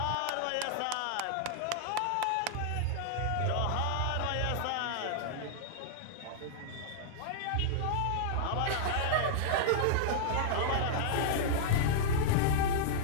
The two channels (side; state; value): both; different; correlation -0.01